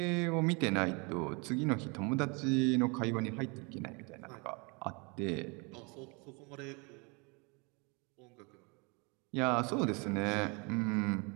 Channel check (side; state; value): left; quieter; 30.7 dB